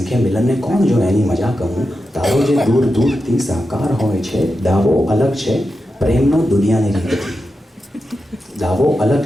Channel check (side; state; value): both; normal; correlation 0.89